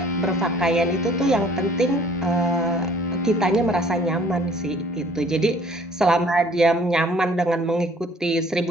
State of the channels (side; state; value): both; normal; correlation 0.56